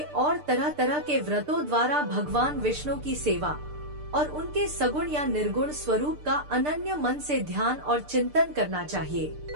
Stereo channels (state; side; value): late; left; 6.7 ms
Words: और तरह तरह के व्रतों द्वारा भगवान विष्णु की सेवा और उनके सगुण या निर्गुण स्वरूप का अनन्य मन से ध्यान और चिंतन करना चाहिए।